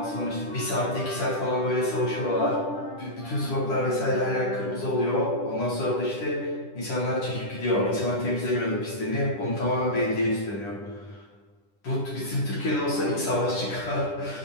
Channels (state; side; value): late; right; 10 ms